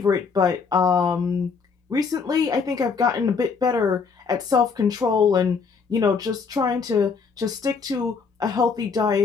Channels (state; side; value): quieter; right; 5.3 dB